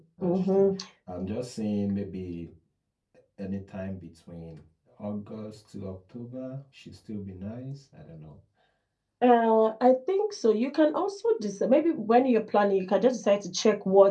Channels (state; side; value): identical; both; correlation 1.00